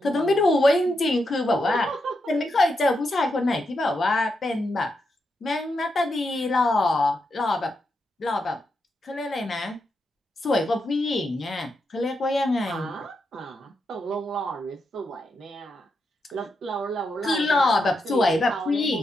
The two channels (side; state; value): both; normal; correlation 0.84